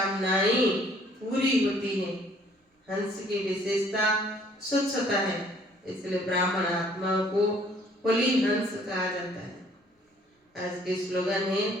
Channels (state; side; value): normal; both; correlation 0.60